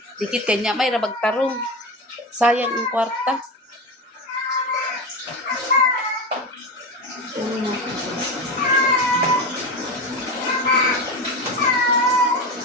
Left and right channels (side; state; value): both; normal; correlation 0.21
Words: Dikit kanya may ra magtarong. Sayang ang kwarta.